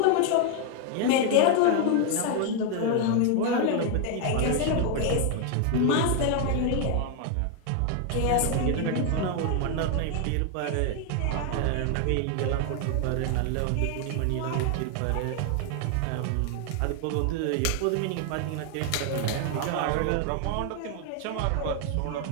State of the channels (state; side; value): different; both; correlation 0.00